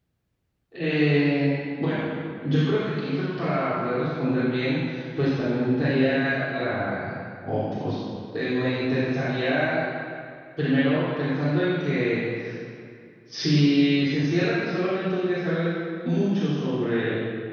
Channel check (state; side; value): identical; both; correlation 1.00